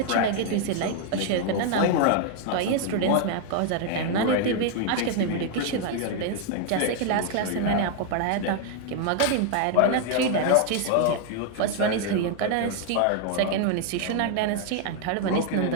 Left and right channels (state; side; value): different; both; correlation 0.00